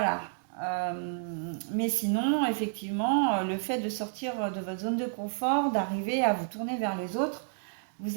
Mais sinon, effectivement, le fait de sortir de votre zone de confort, d'arriver à vous tourner vers les autres,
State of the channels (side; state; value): left; silent; digital silence